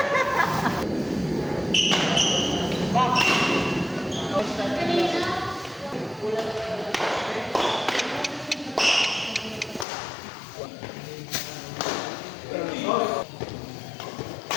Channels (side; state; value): right; drops out; at 9.9 s